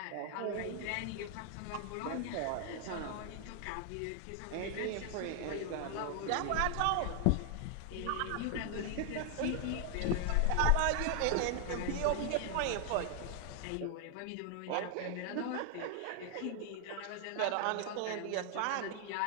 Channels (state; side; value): different; both; correlation 0.00